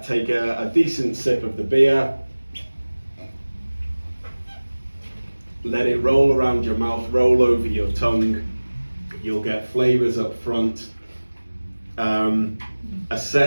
take a decent sip of the beer, let it roll around your mouth, roll over your tongue. You'll get flavours up front.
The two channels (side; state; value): both; inverted; correlation -1.00